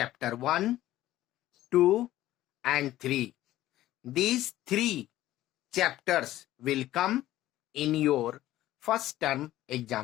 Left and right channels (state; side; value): quieter; right; 14.7 dB